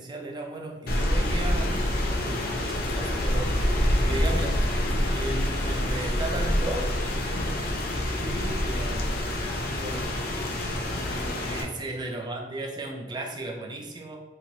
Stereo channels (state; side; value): normal; both; correlation 0.74